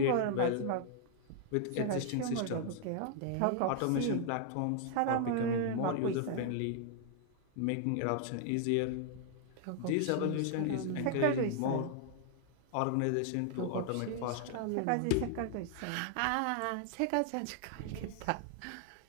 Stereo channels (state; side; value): different; both; correlation 0.00